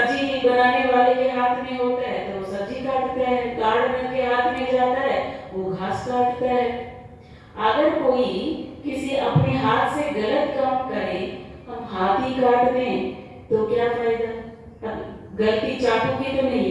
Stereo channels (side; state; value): both; identical; correlation 1.00